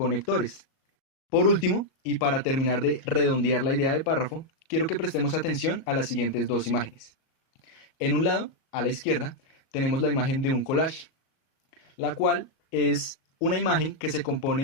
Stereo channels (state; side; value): late; right; 37 ms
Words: Por último, y para terminar de redondear la idea de párrafo, quiero que prestemos atención a las siguientes dos imágenes. En un lado, a la izquierda, tenemos la imagen de un collage, la cual es una imagen que se